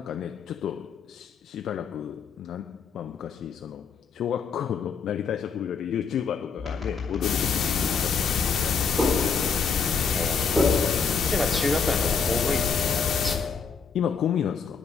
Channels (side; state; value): right; quieter; 5.7 dB